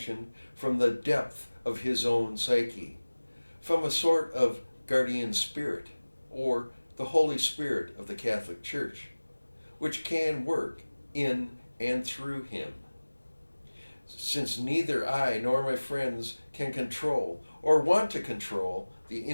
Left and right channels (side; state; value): both; inverted; correlation -1.00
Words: from the depth of his own psyche, from a sort of guardian spirit, or the Holy Spirit of the Catholic Church, which can work in and through him. Since neither I nor my friends can control or want to control the